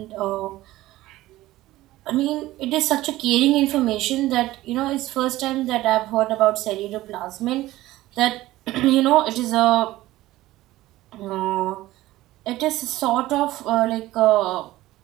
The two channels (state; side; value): quieter; left; 16.6 dB